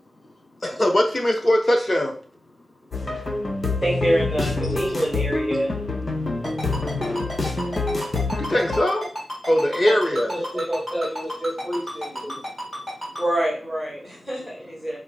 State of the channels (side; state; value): both; normal; correlation 0.92